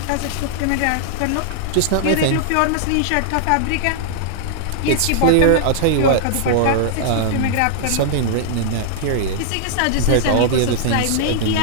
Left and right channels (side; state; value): both; different; correlation -0.01